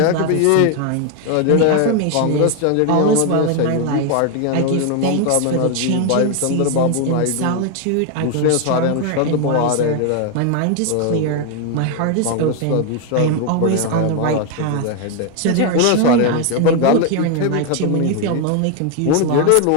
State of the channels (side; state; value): both; different; correlation 0.01